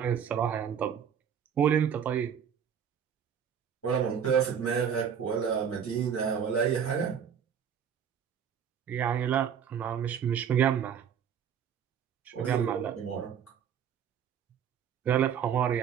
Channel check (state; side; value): quieter; left; 8.1 dB